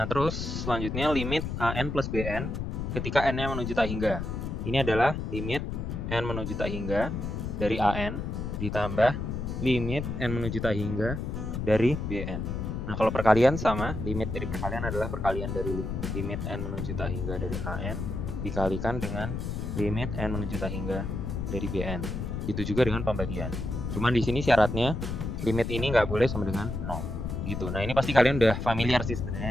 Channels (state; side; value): noise; left; rumble, 4 dB below the sound